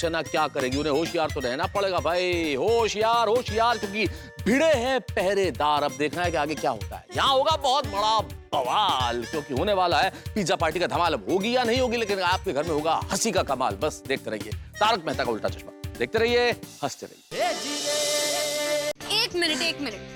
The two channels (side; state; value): both; identical; correlation 1.00